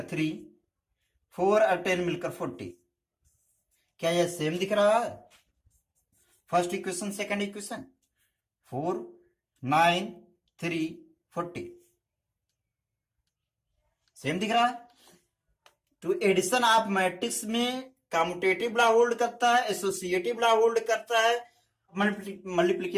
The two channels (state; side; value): identical; both; correlation 1.00